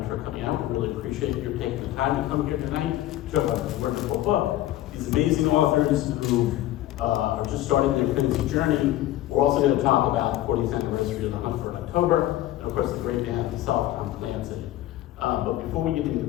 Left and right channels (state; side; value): quieter; right; 14.5 dB